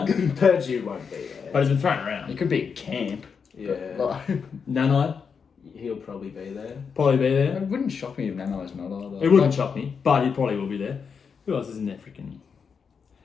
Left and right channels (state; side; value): quieter; right; 6.1 dB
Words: Purdue won't be there. but he's been thrown around. He could be at camp. Yeah. But, Nanai, He'll probably be there. probably be it there. wouldn't shock me if Nano's not either. It wouldn't shock me, but he probably will be there. Who else is in there freaking?